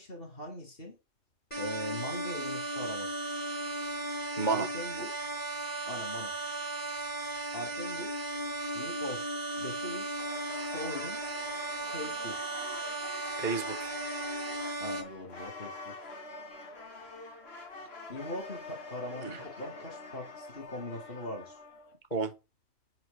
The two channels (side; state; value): right; late; 2.4 ms